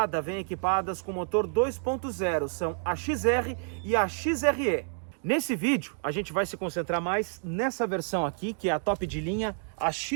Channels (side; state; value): left; silent; 59 dB below the other